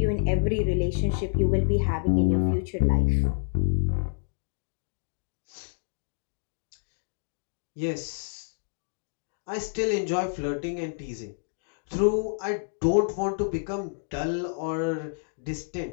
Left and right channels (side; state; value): right; silent; digital silence